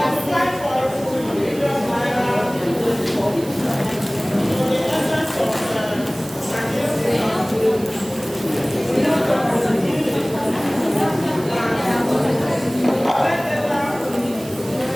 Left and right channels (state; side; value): noise; right; hiss, 17 dB below the sound